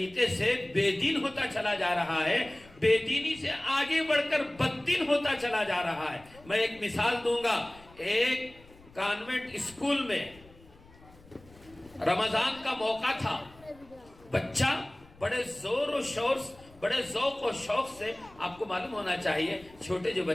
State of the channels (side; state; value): left; noise; rumble, 24 dB below the sound